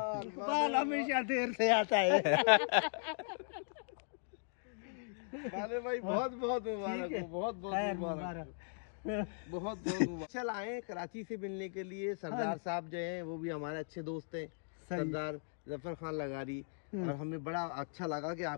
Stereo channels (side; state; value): right; silent; digital silence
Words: इकबाल हमेशा देर से आता है। बाले भाई बहुत बहुत मुबारक हो, बहुत बहुत मुबारक, बहुत बहुत मुबारक। चल आए कराची से मिलने के लिए। सरदार साहब जो हैं वो भी हमारे अच्छे दोस्त हैं, सरदार जफर खान लगारी। और हमें बड़ा अच्छा लगा कि